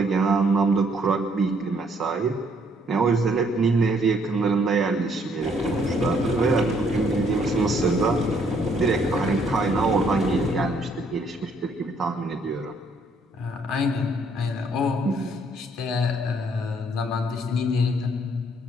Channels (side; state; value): both; normal; correlation 0.67